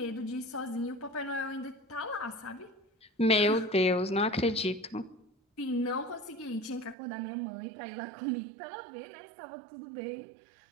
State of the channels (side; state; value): left; drops out; at 7.0 s